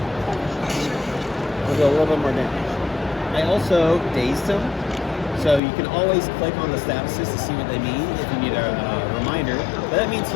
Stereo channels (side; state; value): right; drops out; at 5.6 s